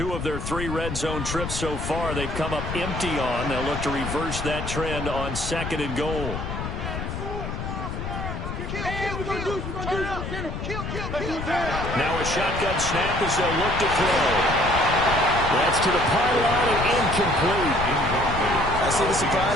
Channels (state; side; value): noise; left; rumble, 5 dB below the sound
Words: of their 3 red zone trips so far, they've come up empty on. They'll look to reverse that trend on 2nd and goal. Now a shotgun snap as they'll look to throw. That's to the pylon and incomplete. I see the